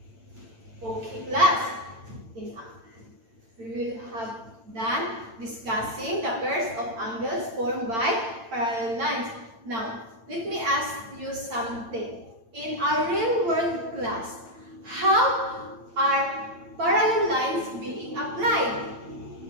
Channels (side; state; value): left; late; 8.9 ms